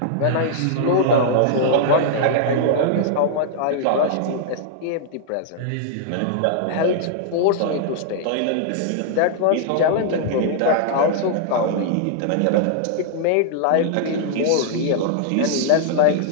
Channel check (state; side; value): different; both; correlation -0.01